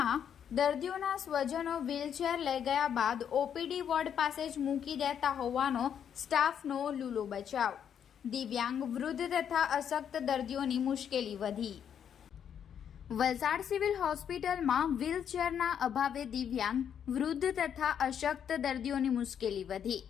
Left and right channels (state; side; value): quieter; right; 8.5 dB